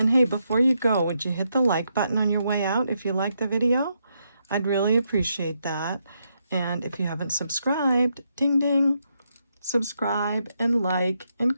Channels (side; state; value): both; inverted; correlation -0.80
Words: hey, before you go, would you hit the like button on your way out if you liked the video? I'd really appreciate that. And if you haven't subscribed, ding ding, subscribe and like